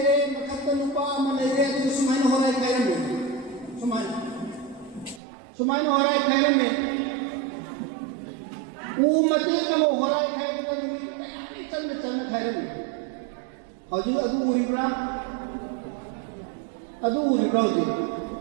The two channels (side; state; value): left; drops out; at 5.2 s